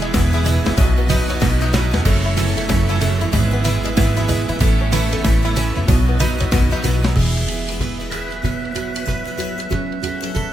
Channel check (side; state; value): both; normal; correlation 0.87